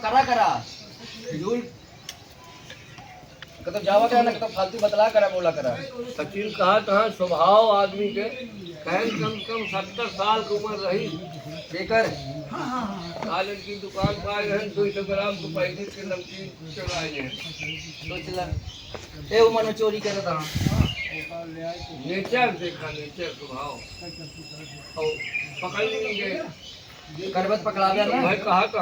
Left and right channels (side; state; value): both; identical; correlation 1.00